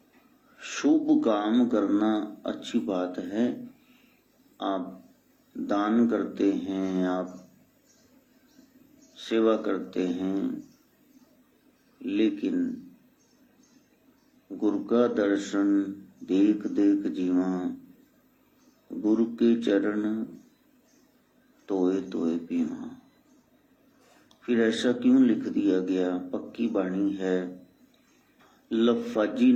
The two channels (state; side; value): identical; both; correlation 1.00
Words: शुभ काम करना अच्छी बात है। आप दान करते हैं, आप सेवा करते हैं, लेकिन गुरु का दर्शन देख देख जीवा, गुरु के चरण तोए तोए पीवा। फिर ऐसा क्यों लिख दिया गया? पक्की बाणी है, लफाजी